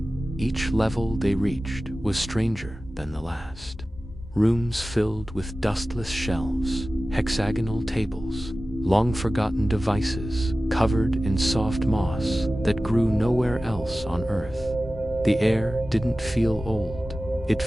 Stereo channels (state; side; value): normal; both; correlation 0.96